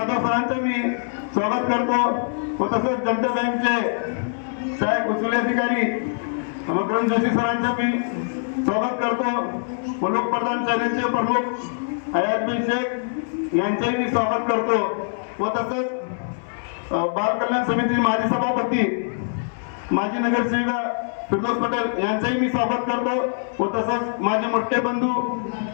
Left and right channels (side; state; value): right; silent; 63 dB below the other